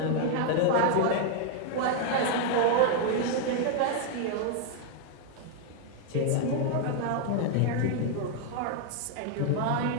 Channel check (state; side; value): different; both; correlation 0.00